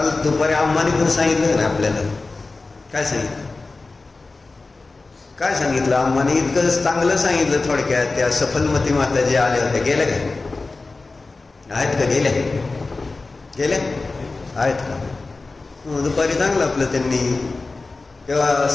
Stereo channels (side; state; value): right; quieter; 3.6 dB